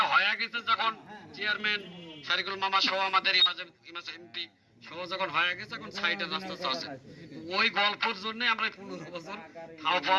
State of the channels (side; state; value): both; identical; correlation 1.00